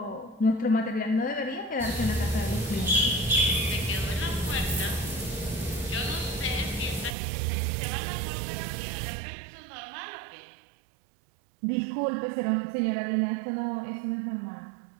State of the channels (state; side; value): drops out; left; at 7.2 s